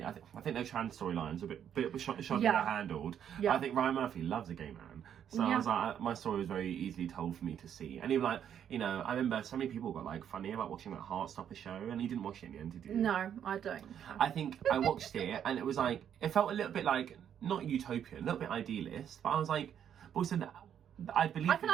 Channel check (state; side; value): quieter; left; 9.2 dB